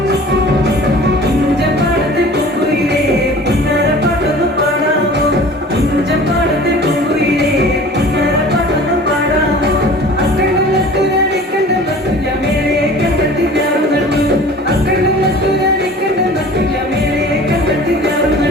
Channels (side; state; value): both; normal; correlation 0.43